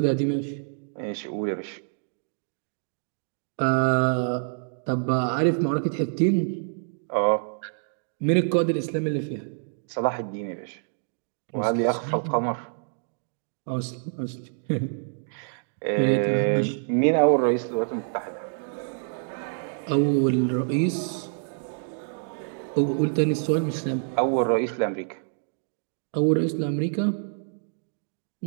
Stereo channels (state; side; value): silent; left; digital silence